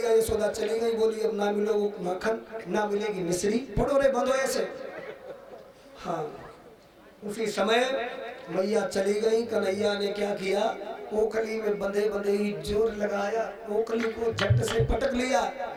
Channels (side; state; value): both; identical; correlation 1.00